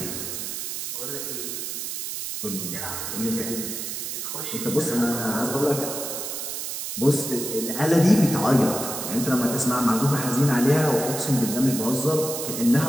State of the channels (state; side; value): noise; right; hiss, 5 dB below the sound